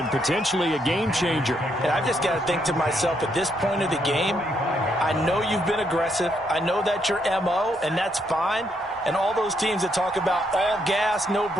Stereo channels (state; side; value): normal; both; correlation 0.75